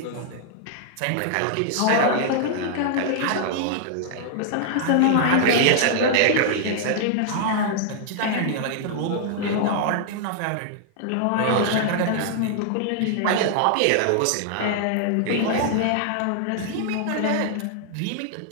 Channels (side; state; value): both; different; correlation -0.01